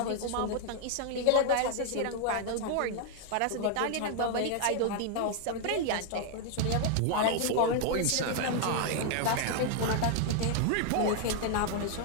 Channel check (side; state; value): both; different; correlation 0.00